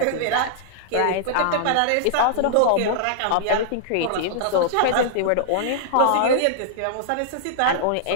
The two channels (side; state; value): both; different; correlation -0.01